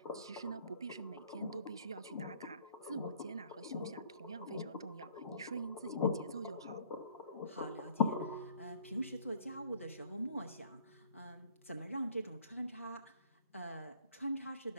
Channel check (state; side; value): inverted; both; correlation -0.57